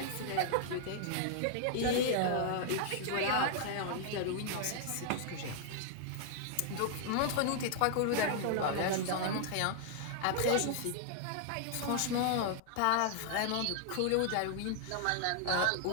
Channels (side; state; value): both; different; correlation -0.01